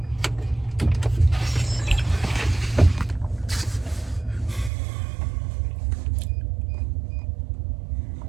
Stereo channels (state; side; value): drops out; left; at 4.7 s